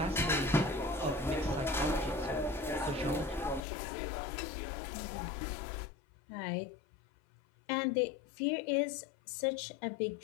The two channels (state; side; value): drops out; right; at 3.6 s